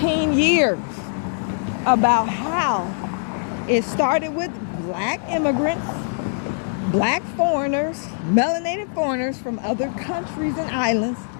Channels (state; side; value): silent; right; 64 dB below the other